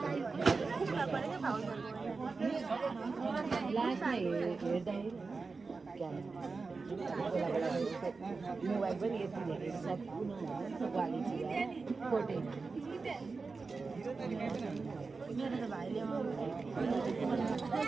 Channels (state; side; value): quieter; left; 4.2 dB